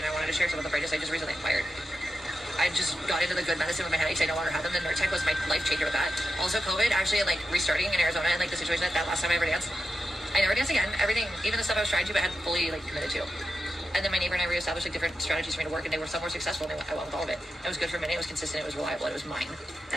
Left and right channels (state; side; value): normal; both; correlation 0.89